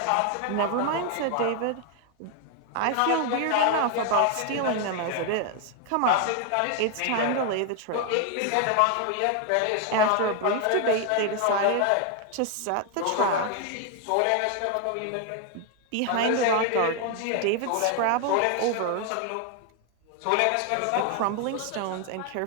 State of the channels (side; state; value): both; different; correlation 0.01